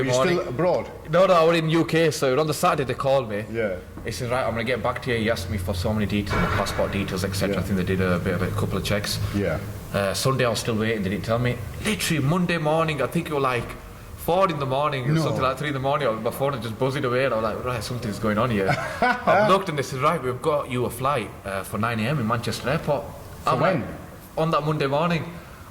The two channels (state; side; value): identical; both; correlation 1.00